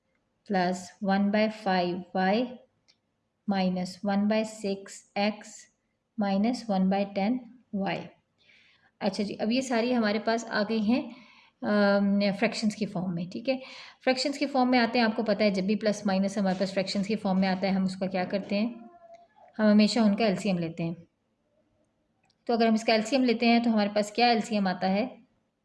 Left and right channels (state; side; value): identical; both; correlation 1.00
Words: plus 1/5 y minus 1/6 x minus 1/10 y। अच्छा जी, अब ये सारी हमारे पास आ गई हैं फ्रैक्शंस की फॉर्म में। ठीक है, फ्रैक्शंस की फॉर्म में आते हैं। आपको पता है जब भी प्लस माइनस हमारे पास फ्रैक्शंस की फॉर्म में आता है हम उसका क्या करते हैं, हम हमेशा उनका एलसीएम लेते हैं। तो अगर हम इसका एलसीएम लेते हैं तो हमारे पास क्या एलसीएम आता है,